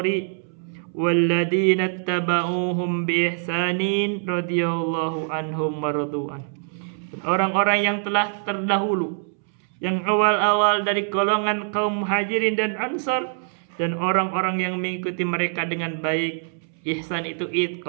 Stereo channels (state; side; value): silent; left; 63 dB below the other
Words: walladzina ittaba'uuhum bi ihsanin radhiyallahu anhum wa radu'an. Orang-orang yang telah terdahulu, yang awal-awal dari golongan kaum muhajirin dan ansar, dan orang-orang yang mengikuti mereka dengan baik. Ihsan itu